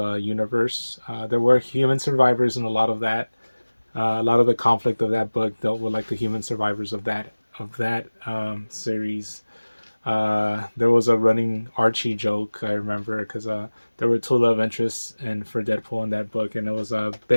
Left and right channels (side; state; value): both; inverted; correlation -1.00